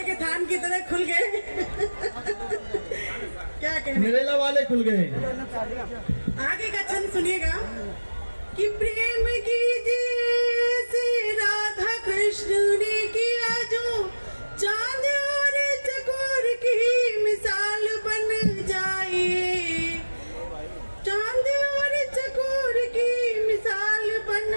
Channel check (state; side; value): inverted; both; correlation -1.00